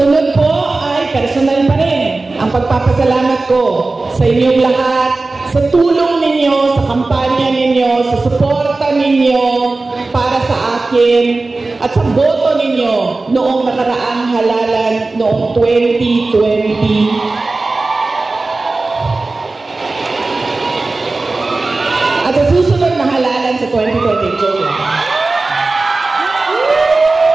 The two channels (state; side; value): quieter; left; 3.4 dB